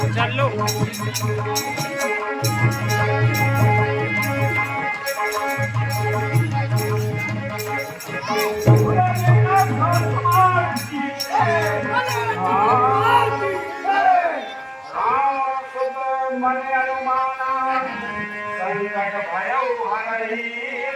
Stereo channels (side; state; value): both; identical; correlation 1.00